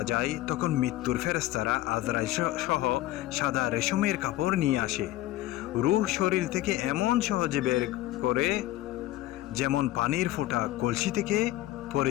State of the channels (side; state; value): right; quieter; 15.9 dB